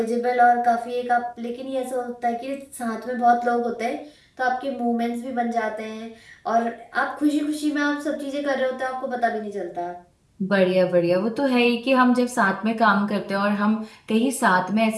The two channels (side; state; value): both; identical; correlation 1.00